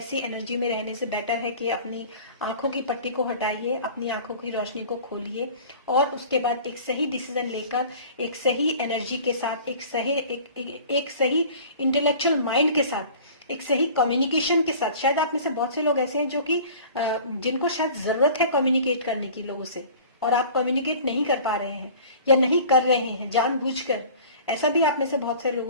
एनर्जी में रहने से बेटर है कि अपनी आंखों की पट्टी को हटाइए, अपनी आंखों की रोशनी को खोलिए और उसके बाद एक सही डिसीजन लेकर, एक सही एनर्जी के साथ, एक सही इंटेलेक्चुअल माइंड के साथ, एक सही कम्युनिकेशन के साथ। शायद आप में से बहुत से लोग ऐसे हैं जो कि जिनको शायद जरूरत है कम्युनिकेट करने की लोगों से, और आप कम्युनिकेट नहीं कर पा रहे हैं या नहीं कर रहे हैं जानबूझकर। ऐसा भी आप में से बहुत सारे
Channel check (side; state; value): both; inverted; correlation -0.44